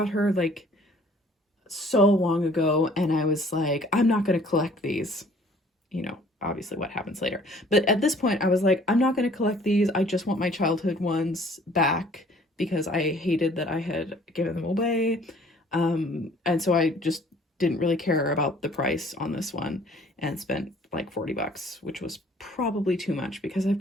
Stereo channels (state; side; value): normal; both; correlation 0.55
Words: her like so long ago, and I was like, I'm not going to collect these. You know, obviously what happens later. But at this point, I was like, I'm not going to collect these. I just want my childhood ones back because I hated that I had given them away. And so I just didn't really care about the price on this one and spent like $40, which was probably too much because I've